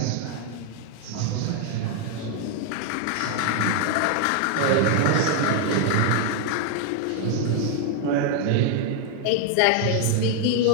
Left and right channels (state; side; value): different; both; correlation 0.00